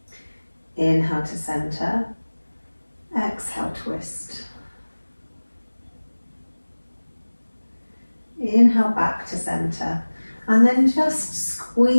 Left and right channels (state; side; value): inverted; both; correlation -1.00